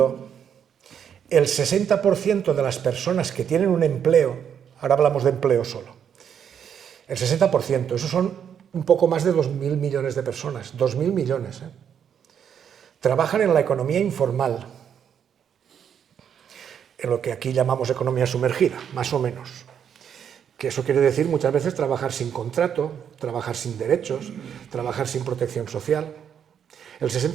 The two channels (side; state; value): left; quieter; 8.3 dB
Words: el 60% de las personas que tienen un empleo, ahora hablamos de empleo solo, el 60%, esos son un poco más de 2.000 millones de personas, 2.000 millones, trabajan en la economía informal, en lo que aquí llamamos economía sumergida, más o menos. Que eso quiere decir muchas veces trabajar sin contrato, trabajar sin derechos, trabajar sin protección social. El